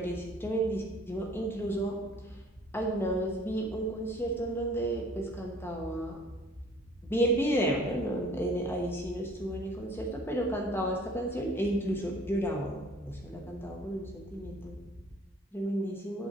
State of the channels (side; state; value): both; normal; correlation 0.53